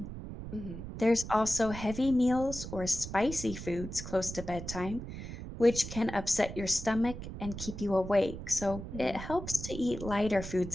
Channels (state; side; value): noise; right; rumble, 9 dB below the sound